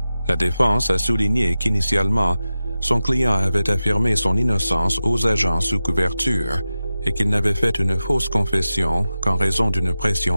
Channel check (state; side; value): inverted; both; correlation -0.94